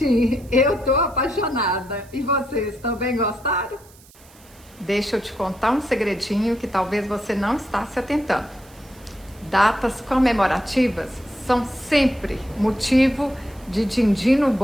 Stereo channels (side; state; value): right; noise; hiss, 25 dB below the sound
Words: Eu tô apaixonada. E vocês também gostaram? Deixa eu te contar um segredinho que talvez você não está se atentando. Datas comemorativas são sempre motivo de din-din no